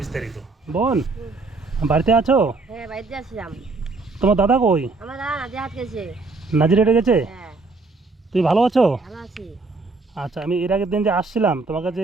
বিস্তারিত। বোন, বাড়িতে আছো? হ্যাঁ, বাড়িতে আসলাম। তোমার দাদা কই? আমার দাদা নাজে হাত গেছে। নাজির রেটে গেছে? হ্যাঁ, তুমি ভালো আছো? ভালো আছি। আচ্ছা, আমি এর আগের দিন যে আসছিলাম তোমাকে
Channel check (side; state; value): left; quieter; 3.7 dB